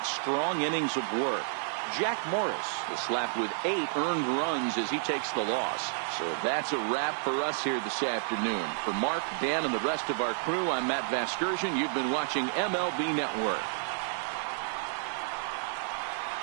strong innings of work. Jack Morris is slapped with 8 earned runs as he takes the loss. So that's a wrap for us here this afternoon. For Mark, Dan, and the rest of our crew, I'm Matt Vasgersian. You've been watching MLB Network.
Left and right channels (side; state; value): left; silent; digital silence